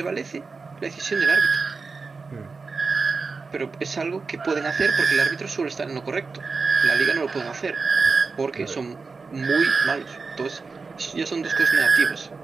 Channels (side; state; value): left; quieter; 4.4 dB